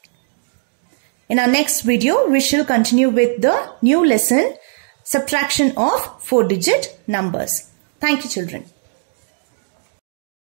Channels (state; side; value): silent; left; digital silence